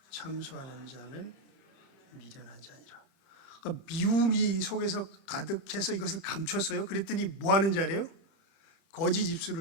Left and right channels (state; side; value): late; right; 30 ms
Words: 참소하는 자는 미련한 자니라. 그러니까 미움이 속에서 가득해서 이것을 감췄어요. 그랬더니 뭐 하는 자래요? 거짓